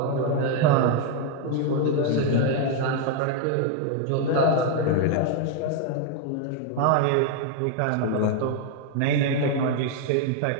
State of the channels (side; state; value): both; different; correlation 0.01